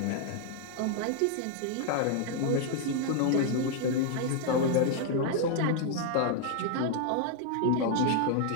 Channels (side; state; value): both; different; correlation 0.00